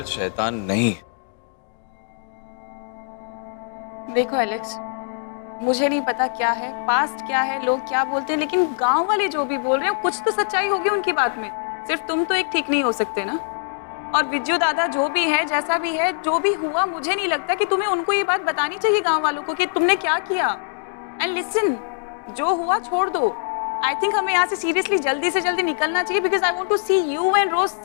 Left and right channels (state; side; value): silent; right; digital silence